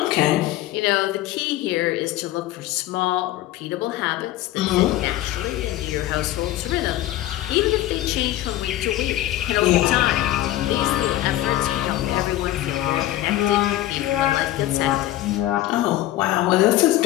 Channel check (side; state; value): right; quieter; 14.6 dB